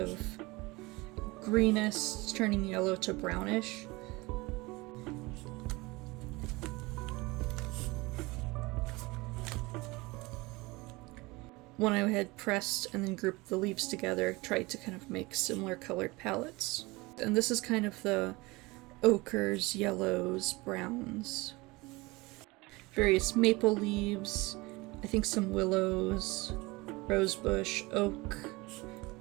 greenish turning yellow to brownish. When I had pressed and then grouped the leaves together, tried to kind of make similar colored palettes. And this is kind of the ochres, yellows, browns. Various maple leaves, I think some willows, rosebush, oak,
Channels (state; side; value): quieter; left; 23.1 dB